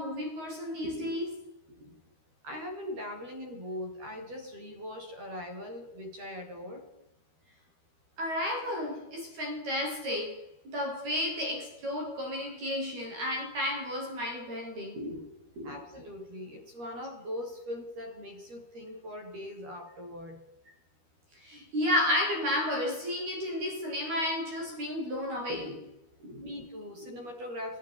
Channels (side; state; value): left; late; 13 ms